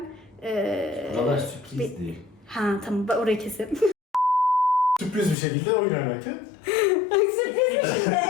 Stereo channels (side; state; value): right; drops out; at 5.4 s